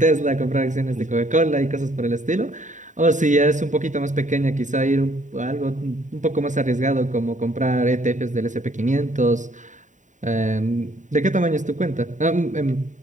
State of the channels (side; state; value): left; late; 0.36 ms